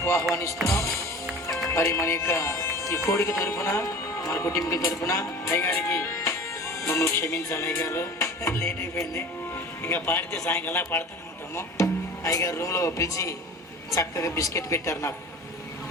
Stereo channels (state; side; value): normal; both; correlation 0.39